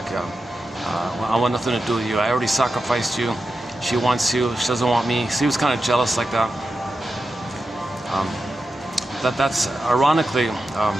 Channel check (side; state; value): both; normal; correlation 0.90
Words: I want nothing to do with you. I already sacrificed you. She wants you. She doesn't want me. So he was kind of jealous like that. That's ironically,